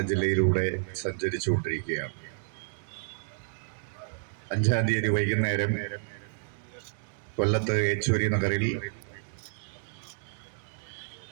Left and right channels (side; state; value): left; silent; digital silence